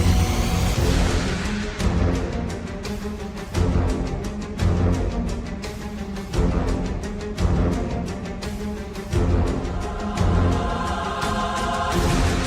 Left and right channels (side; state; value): both; identical; correlation 1.00